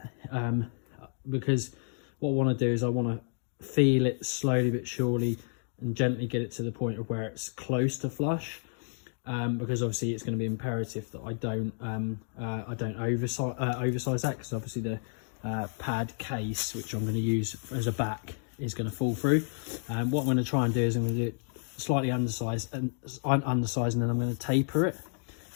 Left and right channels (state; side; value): silent; right; 57 dB below the other